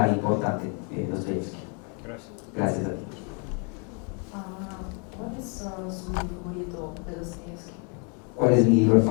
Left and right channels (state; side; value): quieter; right; 37.0 dB